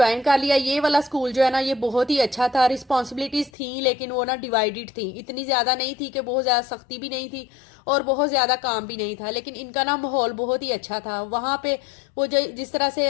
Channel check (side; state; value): right; drops out; at 3.5 s